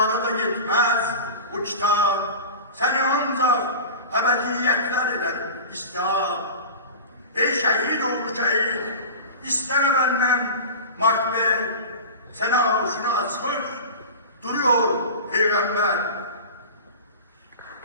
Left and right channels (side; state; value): both; inverted; correlation -0.33